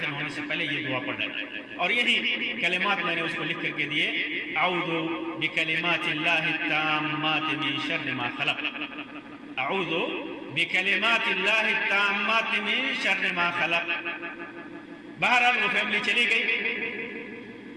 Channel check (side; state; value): both; identical; correlation 1.00